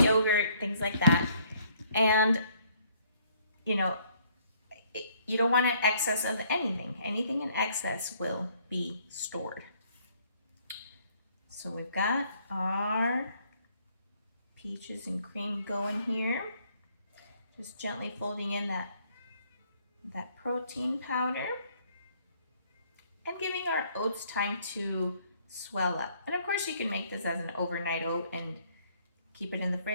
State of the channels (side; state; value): both; inverted; correlation -0.64